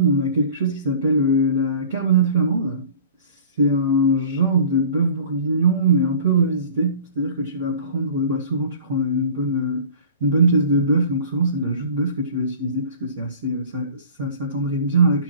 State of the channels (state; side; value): inverted; both; correlation -0.43